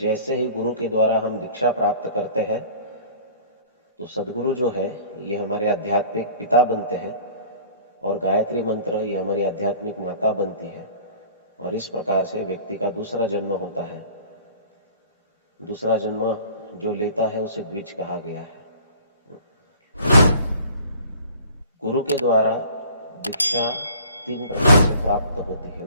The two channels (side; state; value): both; inverted; correlation -0.48